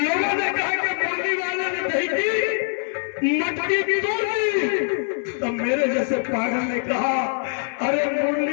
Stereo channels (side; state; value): right; silent; 63 dB below the other